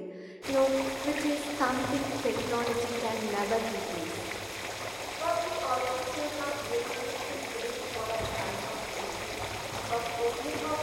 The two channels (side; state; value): both; identical; correlation 1.00